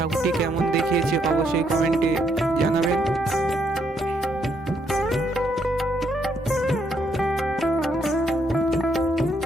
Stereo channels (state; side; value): normal; both; correlation 0.74